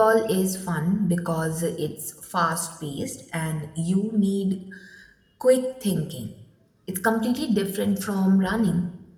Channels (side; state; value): both; identical; correlation 1.00